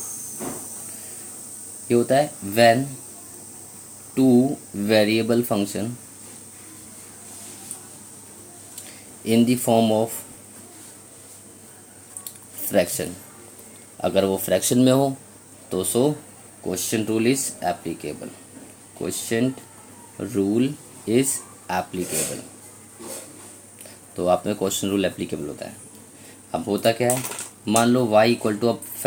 ये होता है when two variable function in the form of fraction, अगर वो फ्रैक्शन में हो तो so question rule is applicable, question rule is applicable. तो आप में क्वेश्चन रूल एप्लीकेबल होता है। अब होता क्या है, मान लो y इक्वल टू, अब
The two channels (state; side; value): identical; both; correlation 1.00